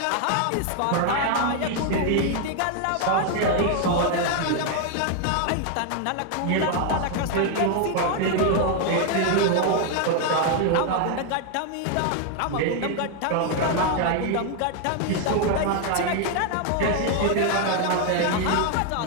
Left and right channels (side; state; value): both; different; correlation 0.00